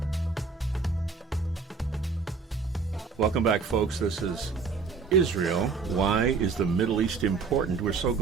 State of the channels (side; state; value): left; quieter; 5.0 dB